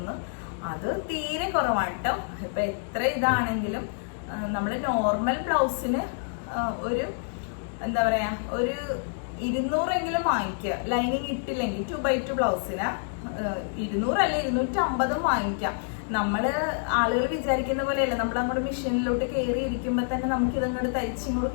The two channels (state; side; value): silent; right; digital silence